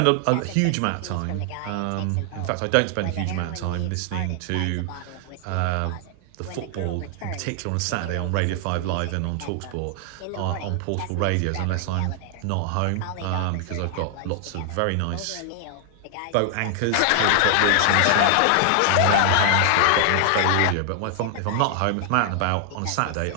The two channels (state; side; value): different; both; correlation 0.00